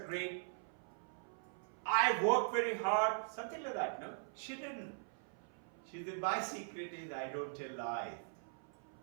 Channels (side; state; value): left; silent; 50 dB below the other